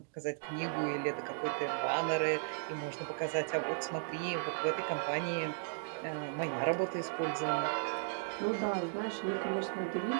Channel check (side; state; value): left; silent; digital silence